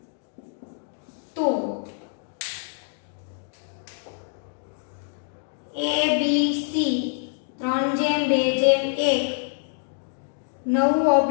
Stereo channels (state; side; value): silent; right; digital silence